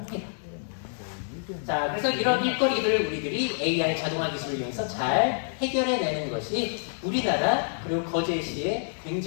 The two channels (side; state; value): right; silent; digital silence